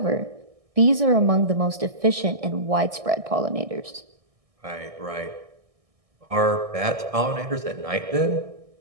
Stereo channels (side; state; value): left; late; 1.6 ms